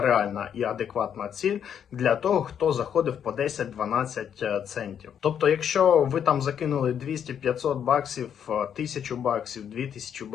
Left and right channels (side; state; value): right; quieter; 8.6 dB